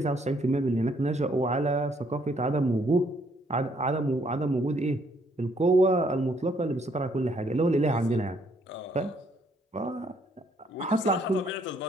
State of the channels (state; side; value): normal; both; correlation 0.68